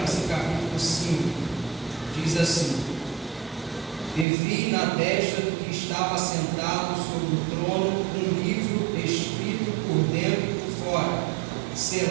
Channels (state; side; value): drops out; left; at 4.2 s